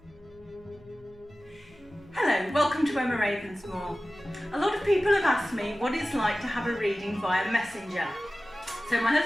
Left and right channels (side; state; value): left; noise; hum, 27 dB below the sound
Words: Hello, welcome to Emma Ravensmoor. A lot of people have asked me what it's like to have a reading via Messenger. So my